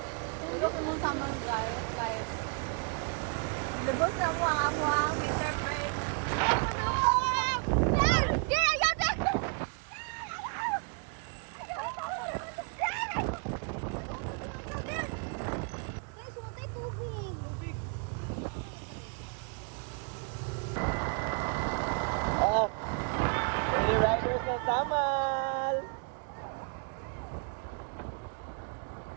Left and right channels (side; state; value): left; quieter; 39.8 dB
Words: Tuyok mo sa mga guys. Lubos na mo ang amuang Mr. Craig. Lady Riders ng Samal!